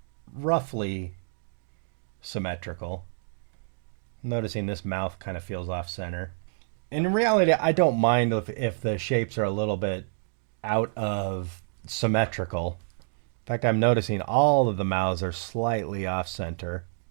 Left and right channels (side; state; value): left; silent; digital silence